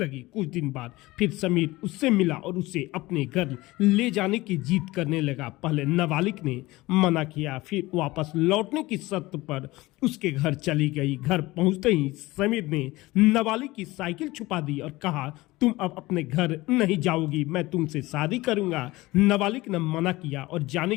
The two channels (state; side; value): quieter; right; 19.8 dB